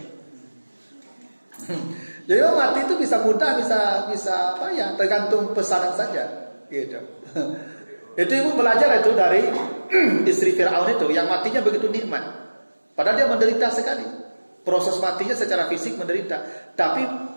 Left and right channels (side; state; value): both; inverted; correlation -1.00